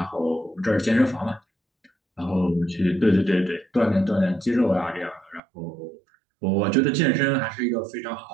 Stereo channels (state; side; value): drops out; left; at 5.4 s